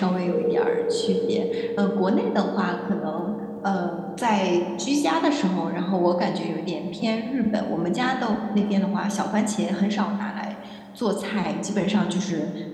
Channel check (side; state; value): both; identical; correlation 1.00